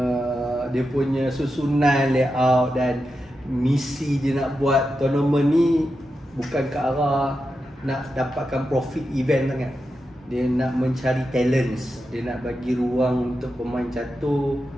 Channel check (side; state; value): both; normal; correlation 0.89